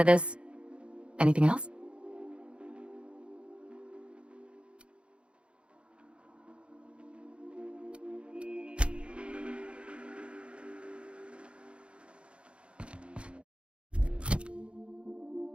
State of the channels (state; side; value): late; left; 0.058 ms